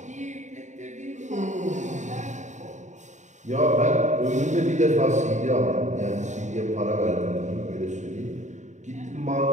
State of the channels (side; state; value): left; late; 0.34 ms